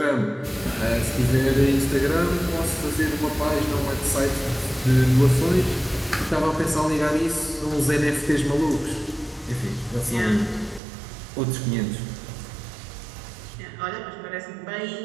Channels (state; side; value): drops out; left; at 10.8 s